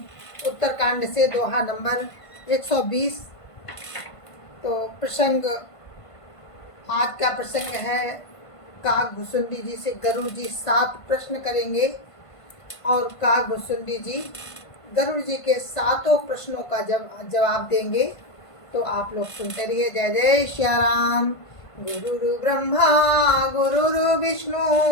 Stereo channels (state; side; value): late; right; 1.5 ms